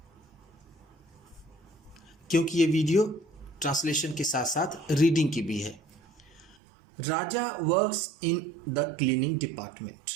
क्योंकि ये वीडियो ट्रांसलेशन के साथ साथ रीडिंग की भी है। Raja works in the cleaning department.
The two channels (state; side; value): drops out; left; at 6.6 s